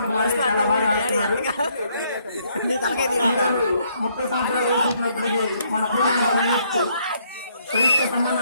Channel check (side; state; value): both; inverted; correlation -0.69